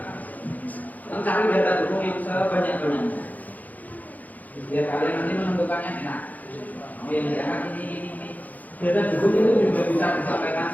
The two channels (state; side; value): late; right; 0.080 ms